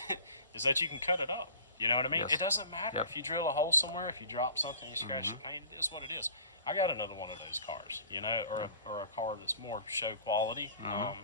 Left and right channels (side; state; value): both; inverted; correlation -0.45